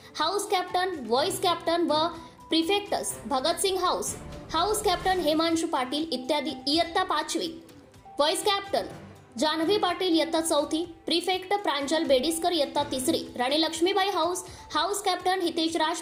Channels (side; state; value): both; identical; correlation 1.00